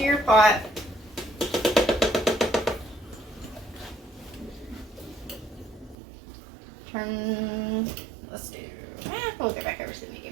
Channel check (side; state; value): left; drops out; at 6.0 s